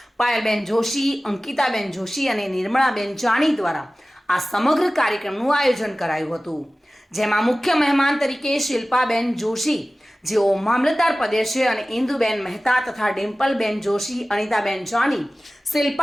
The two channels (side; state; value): both; normal; correlation 0.97